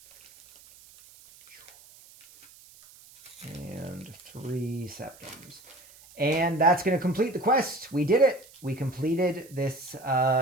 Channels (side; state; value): right; noise; hiss, 23 dB below the sound